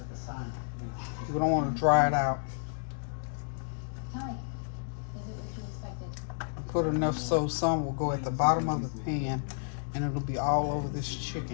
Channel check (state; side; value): silent; right; digital silence